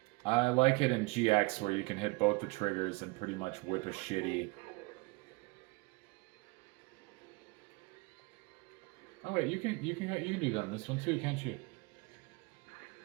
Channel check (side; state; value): left; quieter; 25.8 dB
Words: I like it in GX where you can hit both the triggers and pretty much whip a shitty. Oh wait, you can do that on this one too, can't you?